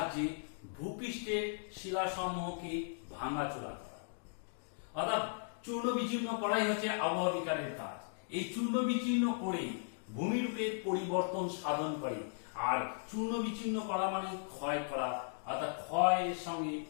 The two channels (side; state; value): right; silent; digital silence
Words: ভূপৃষ্ঠের শিলাসমূহকে ভাঙাচোরা করা, অর্থাৎ চূর্ণ বিচূর্ণ করাই হচ্ছে আবহাওয়া বিজ্ঞানের কাজ। এই চূর্ণ বিচূর্ণ করে ভূমিরূপের পরিবর্তন সাধন করে। আর চূর্ণ বিচূর্ণ করা মানে ক্ষয় করা, অর্থাৎ ক্ষয়ের সঙ্গে